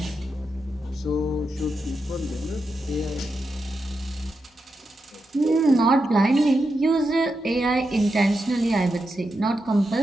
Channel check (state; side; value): normal; both; correlation 0.87